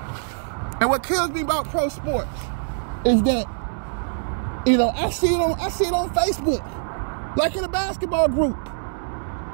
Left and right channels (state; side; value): silent; left; 63 dB below the other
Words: And what kills me about pro sports is that, you know, I see it on Facebook, like in a basketball group.